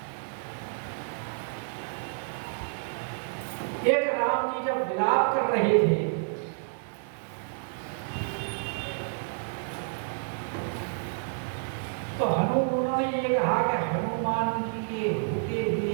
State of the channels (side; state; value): left; silent; digital silence